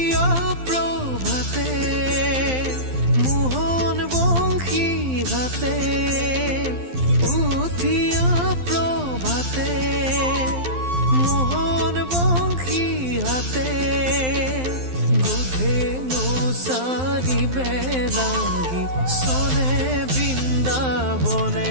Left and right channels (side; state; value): left; late; 12 ms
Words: প্ৰভাতে মোহন বংশী ঘাতে, উঠিয়া প্ৰভাতে মোহন বংশী হাতে। বুধেনো চাৰিবে লাগি চলে